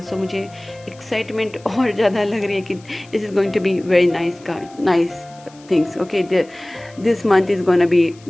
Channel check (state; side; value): noise; left; hiss, 26 dB below the sound